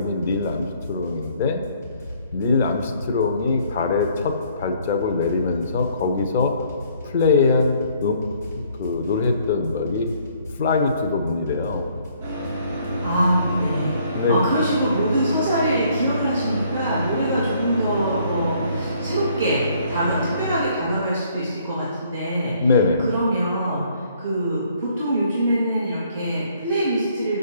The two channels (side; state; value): both; inverted; correlation -0.63